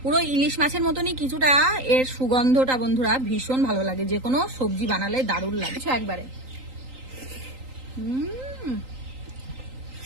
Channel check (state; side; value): late; left; 3.8 ms